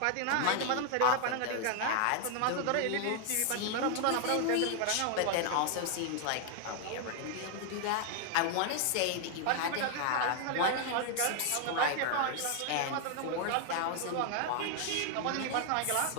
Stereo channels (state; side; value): different; both; correlation 0.00